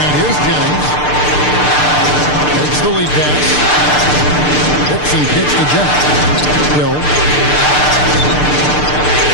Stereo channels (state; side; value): late; right; 6.7 ms